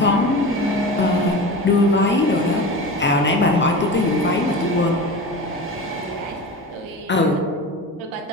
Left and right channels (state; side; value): normal; both; correlation 0.30